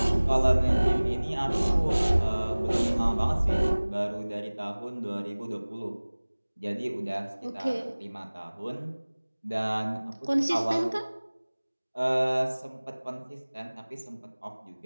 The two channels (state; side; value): inverted; both; correlation -1.00